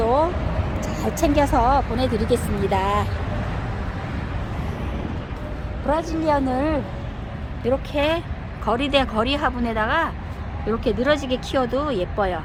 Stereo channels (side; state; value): both; identical; correlation 1.00